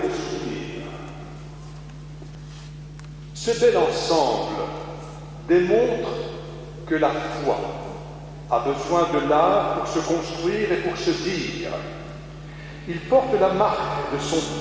le souvenir. Ce bel ensemble démontre que la foi a besoin de l'art pour se construire et pour se dire. Il porte la marque de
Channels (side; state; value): both; identical; correlation 1.00